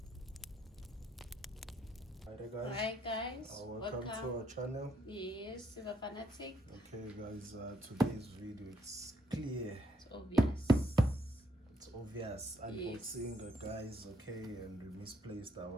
Hi guys, welcome to our channel. Yes, Silver Fanatic. Okay, guys, today's video, it's clear, It's obvious. it's obvious unboxing, guys. Okay, and we misplaced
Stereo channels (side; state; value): both; normal; correlation 0.72